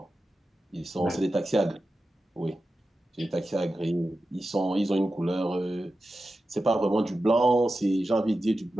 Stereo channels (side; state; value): both; normal; correlation 0.92